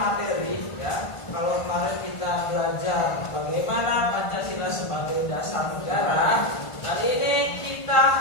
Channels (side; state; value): right; late; 1.5 ms